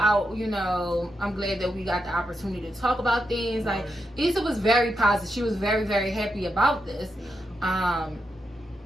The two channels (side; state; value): both; normal; correlation 0.85